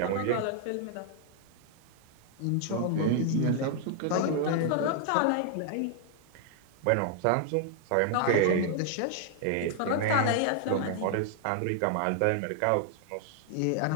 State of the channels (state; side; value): different; both; correlation 0.00